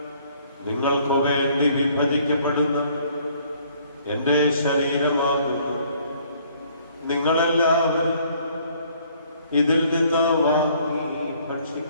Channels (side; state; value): both; inverted; correlation -0.61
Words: നിങ്ങൾക്ക് വേണ്ടി വിഭജിക്കപ്പെടുന്ന എന്റെ ശരീരമാകുന്നു. നിങ്ങളെല്ലാവരും ഇതിൽ നിന്ന് വാങ്ങി